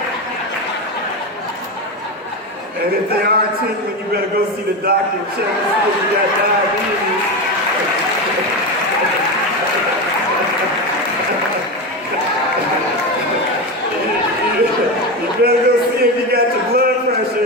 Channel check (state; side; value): normal; both; correlation 0.17